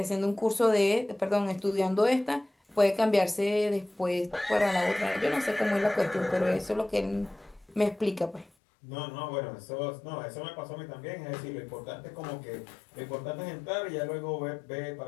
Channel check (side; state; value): right; drops out; at 8.5 s